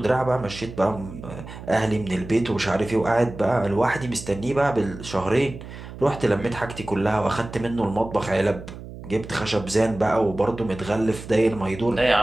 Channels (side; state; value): right; noise; hum, 13 dB below the sound